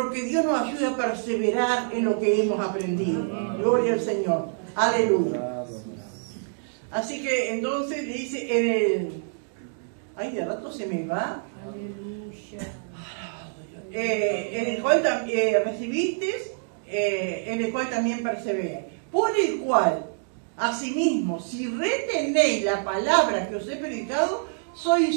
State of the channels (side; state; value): left; silent; digital silence